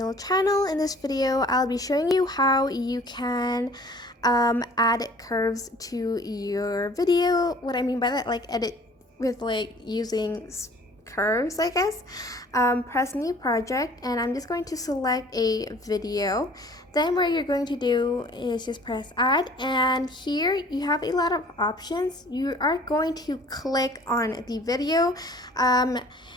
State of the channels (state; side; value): normal; both; correlation 0.51